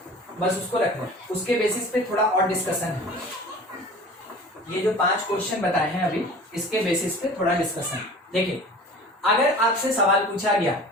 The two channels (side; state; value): both; normal; correlation 0.41